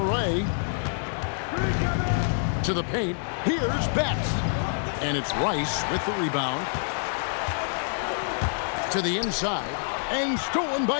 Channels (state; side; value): silent; right; digital silence